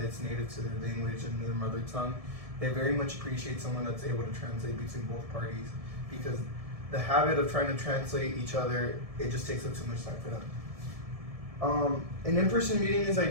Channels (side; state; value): left; late; 1.7 ms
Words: is native to their language and their mother tongue. They very much appreciate someone that's able to translate between both parties because the habit of trying to translate each other, it just takes up too much time for them. An in-person meeting is